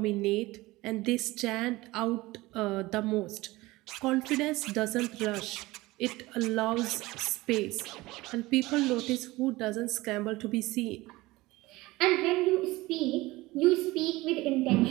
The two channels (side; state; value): left; quieter; 20.0 dB